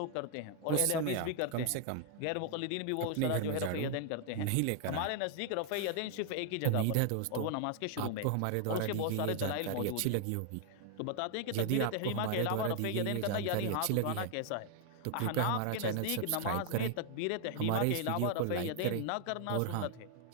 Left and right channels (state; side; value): different; both; correlation 0.00